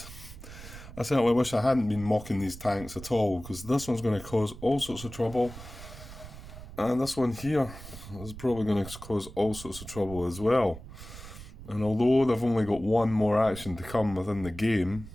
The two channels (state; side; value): noise; right; rumble, 14 dB below the sound